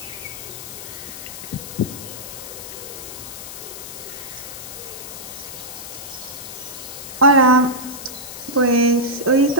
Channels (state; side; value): noise; left; hiss, 10 dB below the sound